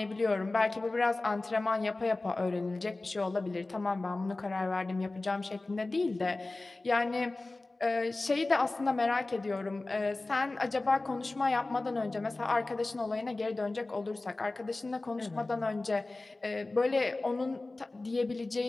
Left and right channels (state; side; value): quieter; right; 3.1 dB